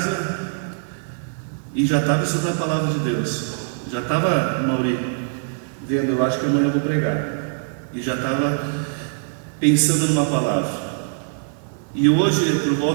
e já estava estudando a palavra de Deus. Já estava, Mauri, vendo, eu acho que amanhã eu vou pregar. E já estava pensando numa palavra. E hoje, por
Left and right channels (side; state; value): left; silent; digital silence